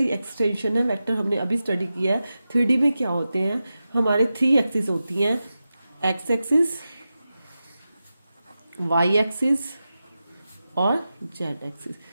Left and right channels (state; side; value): inverted; both; correlation -0.93